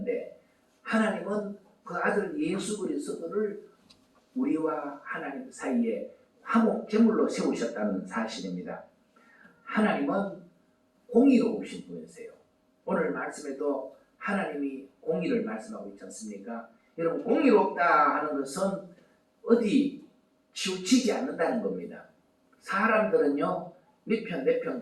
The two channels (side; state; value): both; identical; correlation 1.00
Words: 하나님은 그 아들 예수 그리스도를 우리와 하나님 사이에 화목제물로 세우셨다는 사실입니다. 하나님은 공의로우신 분이세요. 오늘 말씀에도 하나님이 공의를 말씀하고 있지 않습니까? 여러분 공의롭다 하는 것은 어디 치우치지 않는다는 겁니다. 사람들은요 네 편